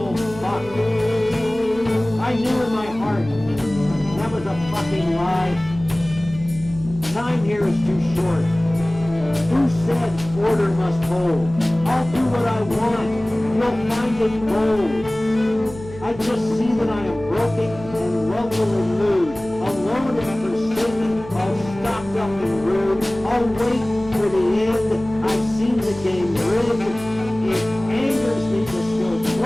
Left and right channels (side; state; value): right; noise; hum, 16 dB below the sound